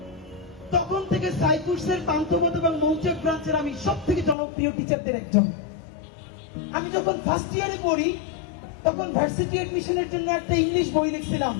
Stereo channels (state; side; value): drops out; right; at 4.4 s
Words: তখন থেকে সাইকুর্সের পান্থপথ এবং মৌচাক ব্রাঞ্চের আমি সব থেকে জনপ্রিয় টিচারদের একজন। আমি যখন ফার্স্ট ইয়ারে পড়ি তখন ভার্সিটি এডমিশনের জন্য একটা ইংলিশ বই লিখছিলাম,